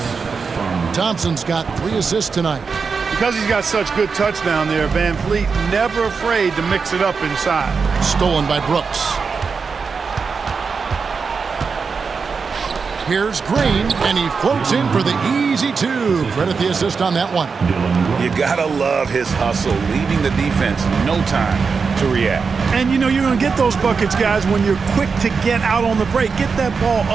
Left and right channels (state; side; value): quieter; left; 5.2 dB